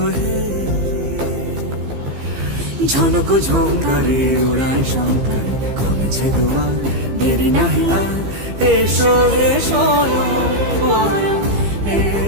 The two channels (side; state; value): left; late; 15 ms